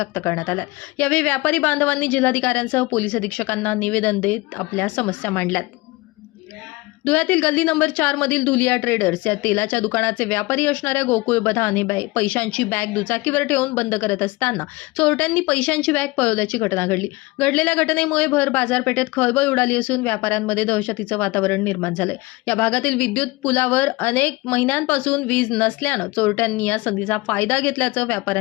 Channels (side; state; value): right; quieter; 22.0 dB